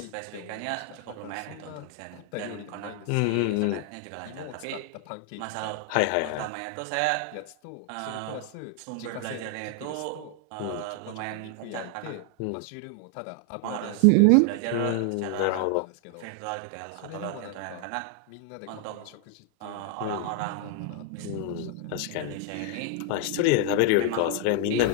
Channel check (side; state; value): both; different; correlation 0.00